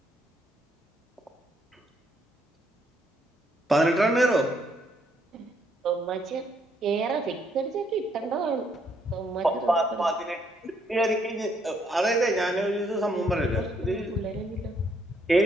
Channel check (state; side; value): normal; both; correlation 0.72